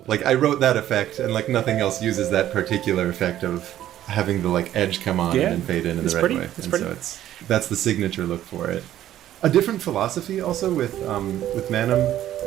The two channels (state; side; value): quieter; left; 12.4 dB